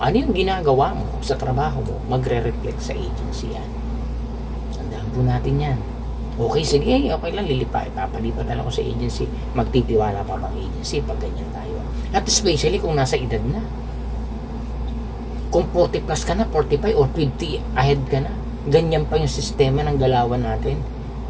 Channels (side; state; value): both; identical; correlation 1.00